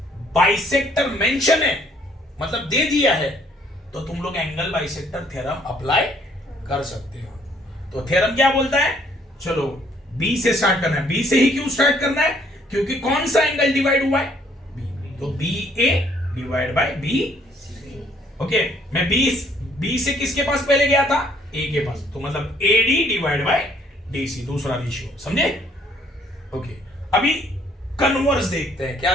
बाइसेक्टर मेंशन है, मतलब दे दिया है, तो तुम लोग एंगल बाइसेक्टर थ्योरम अप्लाई कर सकते हो। तो थ्योरम क्या बोलता है, चलो बी से स्टार्ट करना है। बी से ही क्यों स्टार्ट करना है, क्योंकि कौन सा एंगल डिवाइड हुआ है, बी। तो B A divide by B. Okay, मैं बी से किसके पास पहले गया था, ए के पास, तो मतलब एडी डिवाइड बाय डीसी, दूसरा रेशियो। समझे? ओके, अभी कन्वर्स देखते हैं।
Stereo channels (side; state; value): both; normal; correlation 0.64